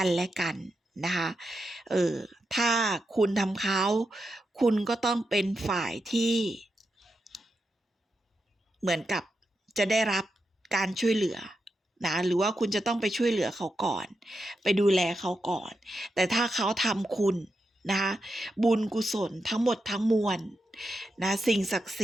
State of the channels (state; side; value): normal; both; correlation 0.87